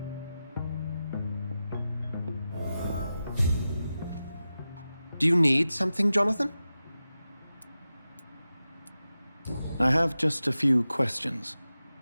Do you need something, Jonathan? I have just a few questions.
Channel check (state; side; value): inverted; both; correlation -0.93